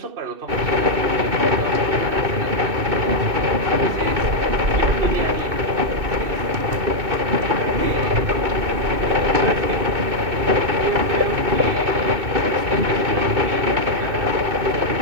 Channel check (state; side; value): late; left; 2.6 ms